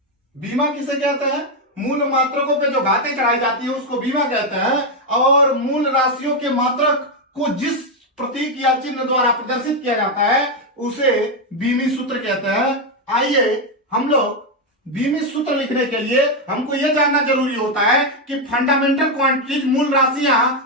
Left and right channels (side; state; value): both; normal; correlation 0.04